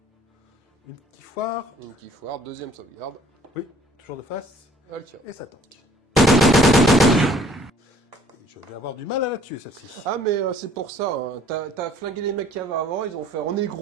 Une petite foire. Une petite foire, deuxième sauvegarde. Oui, toujours de face. Elle tire. Et ça tank. Je vais avoir du mal à la tuer celle-ci. Ah mais c'est pour ça, hein. T'as flingué les mecs qui avaient avant, ils ont fait on est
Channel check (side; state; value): both; normal; correlation 0.56